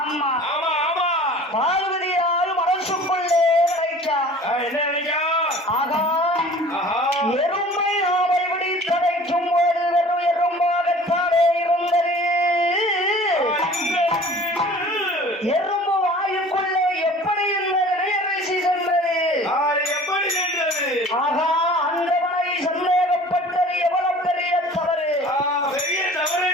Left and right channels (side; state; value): both; normal; correlation 0.46